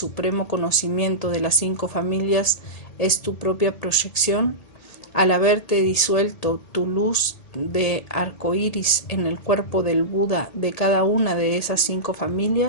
conocimiento de las 5 familias es tu propia proyección, al haberte disuelto tu luz de arcoíris en el cuerpo del Buda de cada una de esas 5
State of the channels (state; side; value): late; right; 1.8 ms